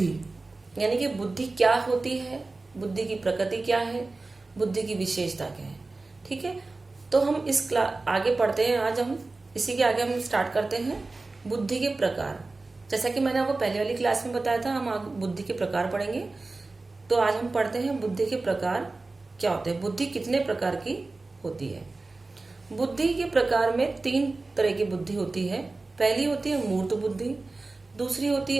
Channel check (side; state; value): left; quieter; 3.4 dB